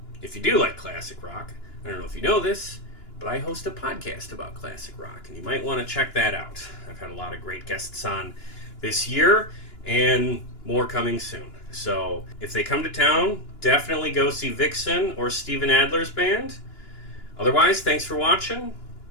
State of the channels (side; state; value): right; late; 2.9 ms